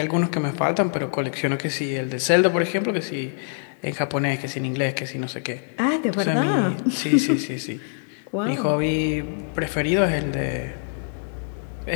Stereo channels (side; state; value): right; silent; digital silence